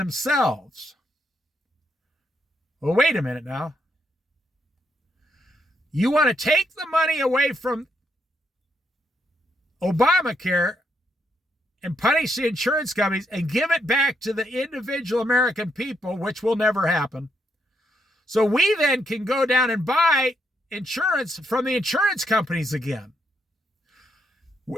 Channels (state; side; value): normal; both; correlation 0.77